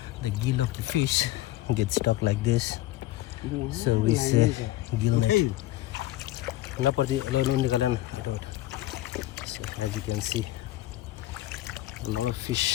the gill of the fish gets stuck like this. So we say gill net. So as you can see, a lot of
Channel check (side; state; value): right; quieter; 15.7 dB